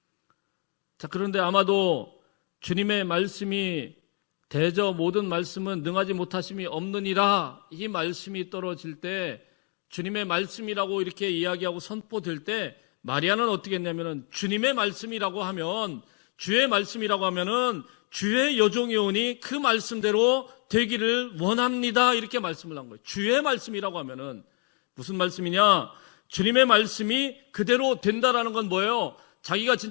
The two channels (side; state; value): right; quieter; 39.2 dB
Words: 자, 그런데 아마도 주님의 말씀이 대저 모든 말씀은 능하지 못하심이 없느니라, 이 말씀이 떨어질 때, 주님의 말씀이라고 이렇게 이야기하고 선포될 때 마리아는 어떻게 했냐면은 주님의 말씀이라고 하면, 주의 말씀이라고 하면은 주의 여종이오니 그 말씀대로 되기를 원합니다, 이렇게 말씀을 한 거예요. 주의 말씀이라고 하면은 무슨 말씀이냐? 주님의 말씀이 그대로 된다라는 건 뭐예요? 자기가